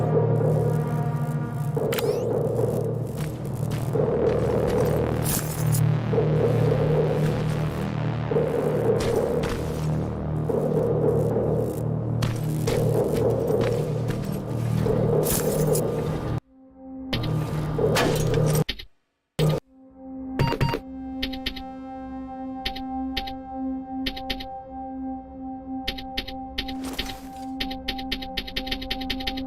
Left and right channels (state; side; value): identical; both; correlation 1.00